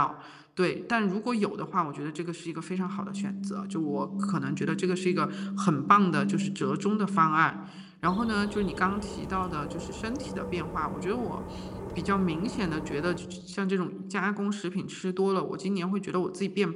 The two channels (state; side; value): identical; both; correlation 1.00